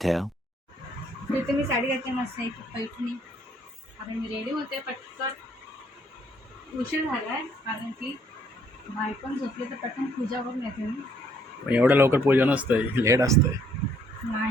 तिथे मी साडी घातली मस्त एक पैठणी. आता मी रेडी होते पटकन. उशीर झालाय कारण की बाई पण झोपली, तर पटकन पूजा करून येते मी. एवढं लवकर पूजा नसतंय, लेट असतंय.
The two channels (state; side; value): normal; both; correlation 0.65